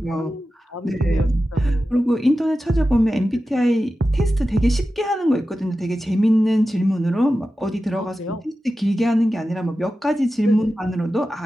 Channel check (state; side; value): normal; both; correlation 0.93